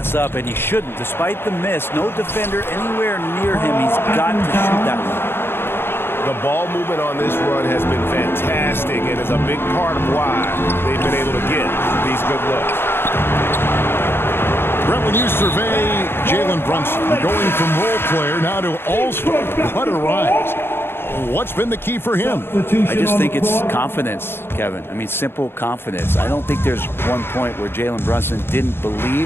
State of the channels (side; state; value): right; late; 0.11 ms